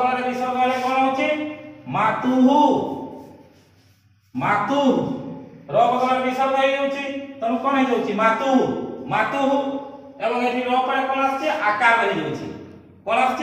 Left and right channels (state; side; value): identical; both; correlation 1.00